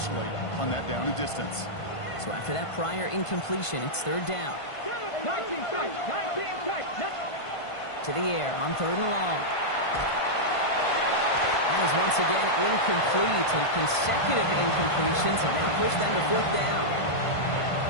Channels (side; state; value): right; late; 1.5 ms